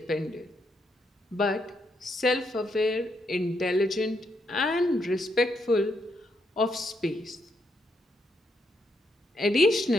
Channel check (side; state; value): both; normal; correlation 0.78